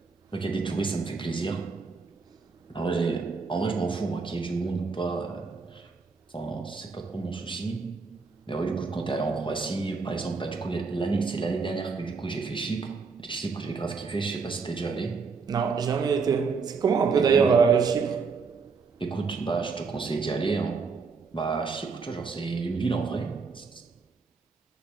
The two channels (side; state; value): left; quieter; 4.8 dB